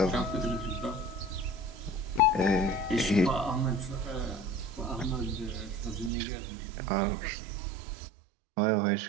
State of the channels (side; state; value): left; drops out; at 6.1 s